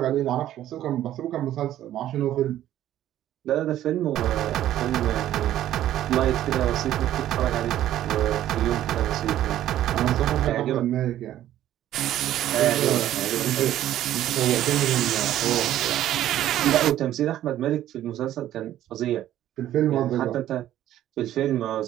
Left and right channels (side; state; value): left; quieter; 12.6 dB